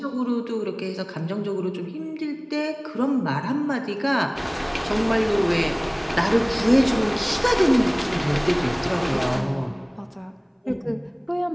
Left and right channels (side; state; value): both; identical; correlation 1.00